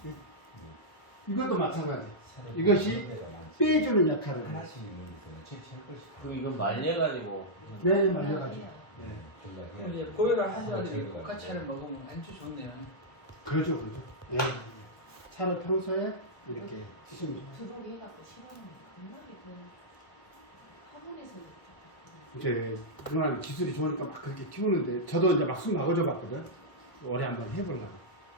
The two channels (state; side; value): late; right; 1.2 ms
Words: 이것도 마찬가지. 새로 이것이 한 데가 많지. 빼주는 역할을 해요. 하나씩 있는 거예요. 그럼 이걸 말려가지고. 네, 말려가지고. 예. 그럼 이제 고혈압 환자들이 국화차를 먹으면 아주 좋네요. 그러죠, 그러죠. 예. 차를 평소에 이렇게 드시면 좋아요. 들어오게 해갖고 심하면 정말이 그 화분에서 이제 누나는 기술이 좋으니까 막 그렇게 키우는데 저도 이제 막 숨 막아줘 봤거든. 올해 한번 해보려고.